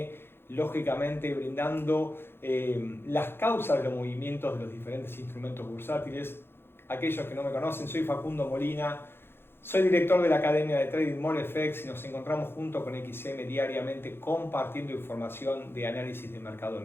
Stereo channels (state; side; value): late; right; 0.11 ms